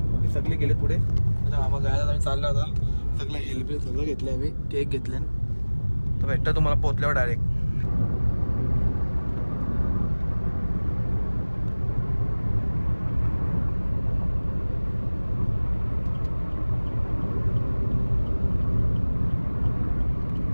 सगळे गेले पुढे. आता मामा गायला आम्ही चाललो. आता सगळं हेल्प सगळं घेतलं आम्ही, केक घेतले. तर भेटतं तुम्हाला पोचल्यावर डायरेक्ट.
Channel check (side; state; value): both; inverted; correlation -1.00